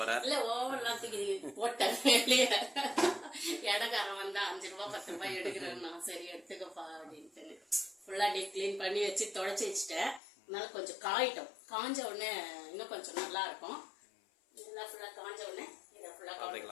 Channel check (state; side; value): drops out; right; at 10.2 s